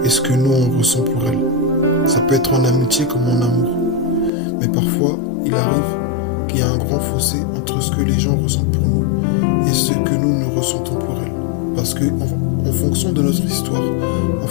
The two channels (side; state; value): right; drops out; at 4.3 s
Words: et ce que nous on ressent pour elle. Ça peut être en amitié comme en amour. Mais parfois, il arrive qu'il y a un grand fossé entre ce que les gens ressentent pour nous et ce que nous ressentons pour elles. Parce que en fonction de notre histoire, en